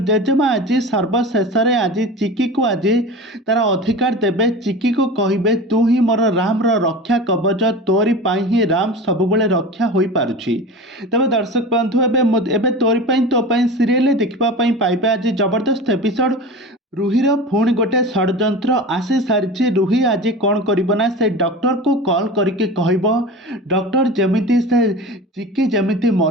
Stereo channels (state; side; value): normal; both; correlation 0.32